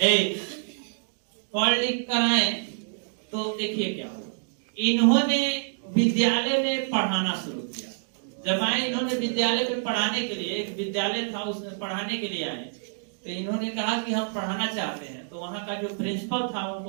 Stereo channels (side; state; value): left; silent; digital silence